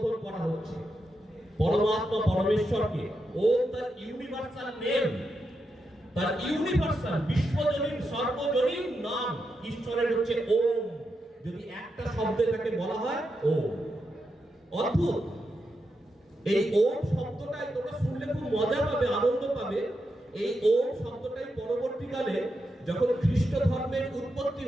করা হচ্ছে। পরমাত্মা, পরমেশ্বরকে, ওম তার ইউনিভার্সাল নেম, তার ইউনিভার্সাল বিশ্বজনীন সর্বজনীন নাম ঈশ্বরের হচ্ছে ওম। যদি একটা শব্দে তাকে বলা হয় ওম। অদ্ভুত এই ওম শব্দটাই তোমরা শুনলে খুব মজা পাবে, আনন্দ পাবে। এই ওম শব্দটাই পরবর্তীকালে যখন খ্রিস্ট ধর্মের উৎপত্তি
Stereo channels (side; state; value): both; normal; correlation 0.86